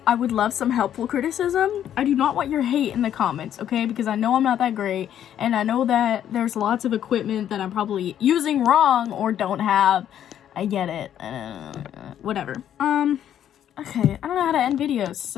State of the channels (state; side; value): quieter; right; 10.3 dB